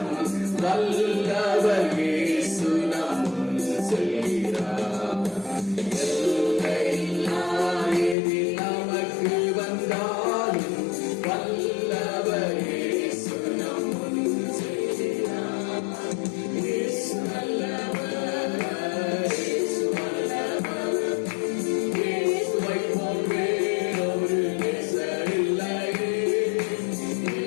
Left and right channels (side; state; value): right; drops out; at 8.2 s